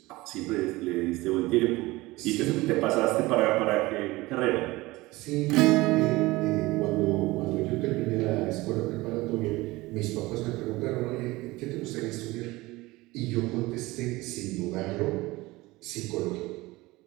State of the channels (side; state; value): left; quieter; 20.4 dB